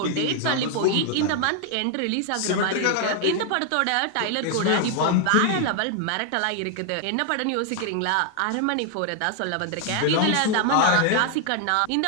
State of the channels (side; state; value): both; different; correlation 0.00